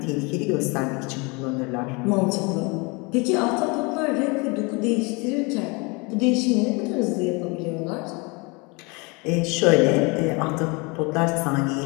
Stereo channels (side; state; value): right; quieter; 28.6 dB